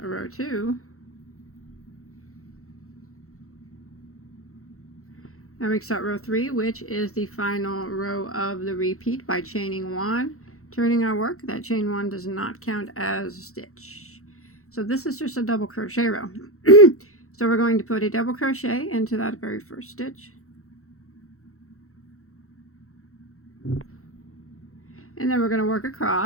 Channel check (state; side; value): late; right; 0.64 ms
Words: 2. Now we start row 3, which is the final row of the repeat by chaining 1. Turning our work, that chain 1 does not count as a stitch. So this is just a double crochet row. So we're going to put a double crochet into that very first stitch. And then we're going to work